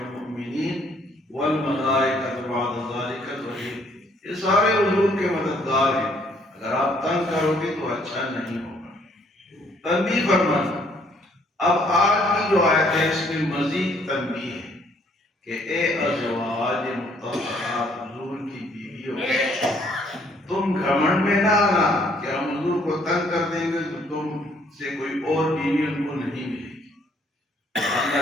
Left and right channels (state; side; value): normal; both; correlation 0.64